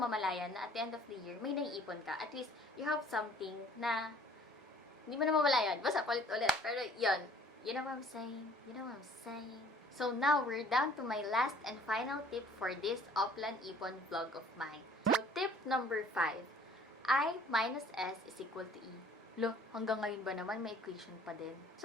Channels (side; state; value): both; normal; correlation 0.54